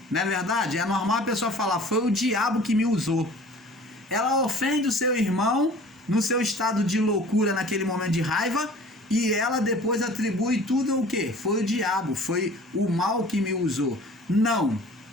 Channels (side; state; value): both; normal; correlation 0.47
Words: Não é verdade? É normal a pessoa falar: foi o diabo que me usou. Ela ofende o seu irmão no seu estado de loucura, naquele momento de raiva, e ela depois atribui tudo o quê? Foi o diabo, foi o mal que me usou. Não.